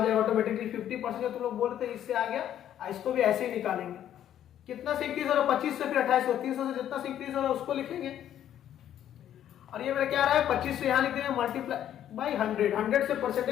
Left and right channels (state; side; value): quieter; right; 10.8 dB